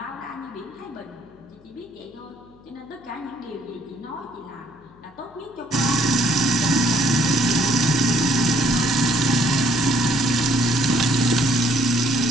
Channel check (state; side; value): noise; left; hum, 27 dB below the sound